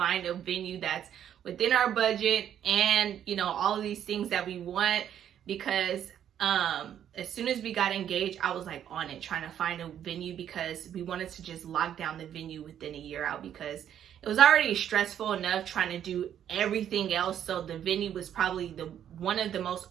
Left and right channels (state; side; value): quieter; left; 9.9 dB